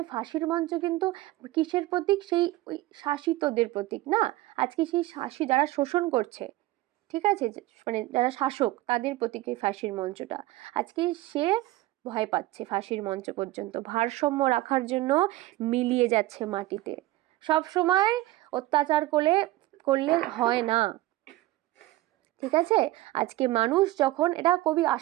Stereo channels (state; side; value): quieter; left; 17.7 dB